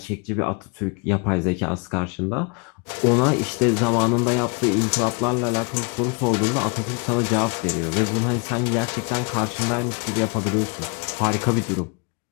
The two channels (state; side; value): quieter; right; 31.9 dB